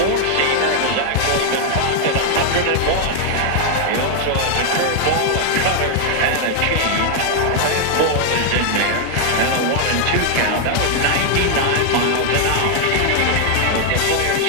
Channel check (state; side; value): different; both; correlation 0.00